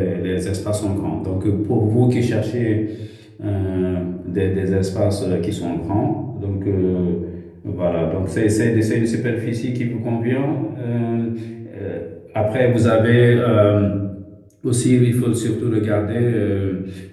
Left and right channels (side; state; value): both; identical; correlation 1.00